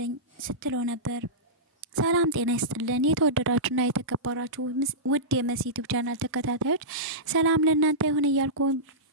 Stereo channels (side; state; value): both; normal; correlation -0.16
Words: ስትለው ነበር። ሰላም ጤና ይስጥልን የተወደዳችሁና የተከበራችሁ ውድ የመሲ ዩቲዩብ ቻናል ተከታታዮች ሰላም ለእናንተ ይሁን እያልኩ